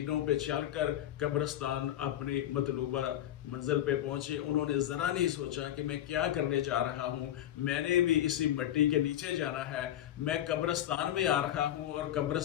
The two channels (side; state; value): right; quieter; 12.0 dB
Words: पे चलकर कब्रिस्तान अपनी मतलूबा मंजिल पे पहुंचे। उन्होंने जरा नहीं सोचा कि मैं क्या करने जा रहा हूं, मैंने भी इसी मिट्टी के नीचे जाना है, मैं कब्रिस्तान में आ रहा हूं और